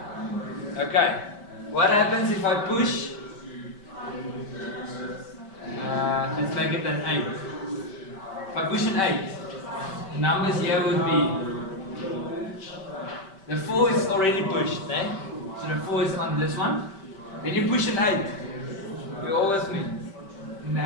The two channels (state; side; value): late; right; 5.2 ms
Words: Okay. What happens if I push? Let's make it an 8. If I push an 8, the numbers here would be. The 4 is already pushed, eh? So the 4 is on this one. Then you push an 8. You're all with me. And the